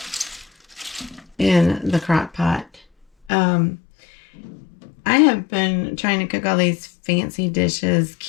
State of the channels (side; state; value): right; drops out; at 3.3 s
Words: in the crock pot. I have been trying to cook all these fancy dishes,